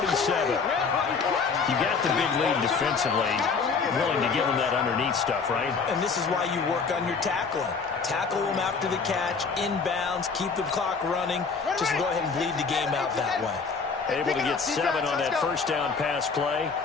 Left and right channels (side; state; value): right; quieter; 5.1 dB